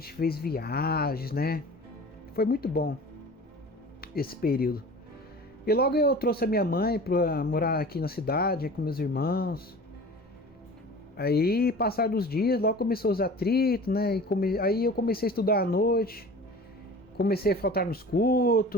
fez viagens, né? Foi muito bom esse período. E logo eu trouxe a minha mãe para morar aqui na cidade, com meus irmãos. Aí, passar dos dias, logo começou os atritos, né? Aí eu comecei a estudar à noite. Comecei a faltar nos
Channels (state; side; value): normal; both; correlation 0.40